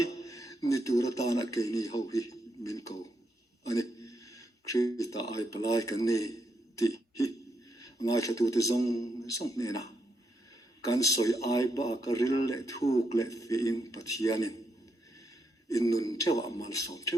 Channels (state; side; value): normal; both; correlation 0.80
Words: ni tu ra ta na ke ni ho hi min ko ani Krista ai palai kan ni ti hi ngai thatu te zong ne na kan soi ai ba ka hril le thuk le fi in Pathian in nun thewa mal som